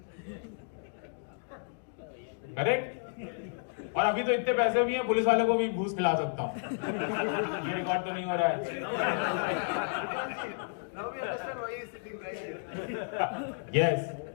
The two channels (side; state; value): right; silent; digital silence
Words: करेक्ट? और अभी तो इतने पैसे भी हैं, पुलिस वालों को भी घूस खिला सकता हूं. ये रिकॉर्ड तो नहीं हो रहा है. Now we understand why he is sitting right here. Yes.